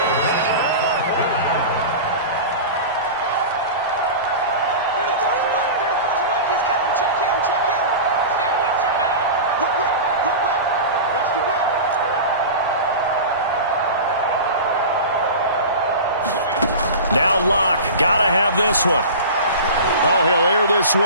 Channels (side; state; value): both; inverted; correlation -0.31